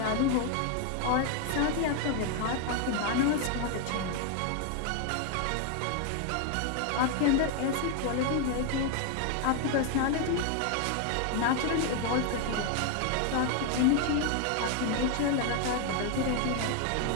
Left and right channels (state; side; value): different; both; correlation 0.01